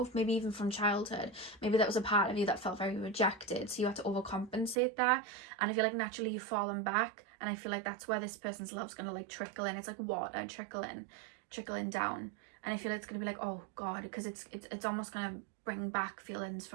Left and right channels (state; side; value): drops out; left; at 4.8 s